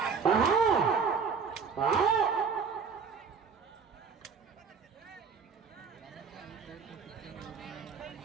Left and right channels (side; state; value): left; quieter; 5.8 dB